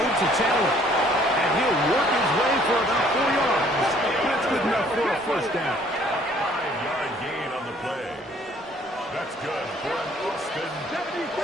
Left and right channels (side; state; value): both; normal; correlation 0.60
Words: to Taylor. And he'll work his way for about 4 yards. That's good enough for a first down. 5-yard gain on the play. That's good for an Austin.